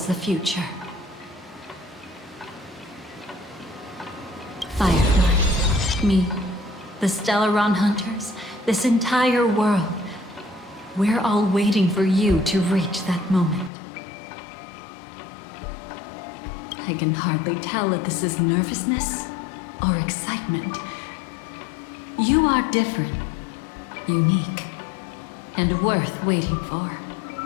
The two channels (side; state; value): right; drops out; at 13.7 s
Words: the future. Firefly, me, the Stellaron Hunters, this entire world, we're all waiting for you to reach that moment. I can hardly tell if this is nervousness or excitement. You are different, unique, and worth waiting for.